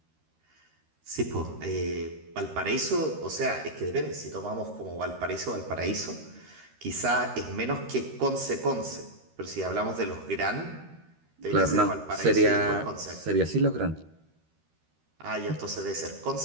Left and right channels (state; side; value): late; left; 13 ms